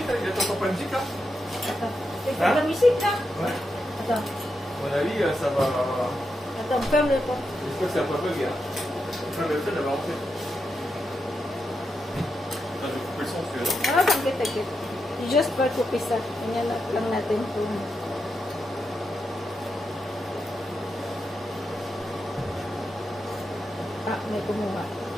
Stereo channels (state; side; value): normal; both; correlation 0.86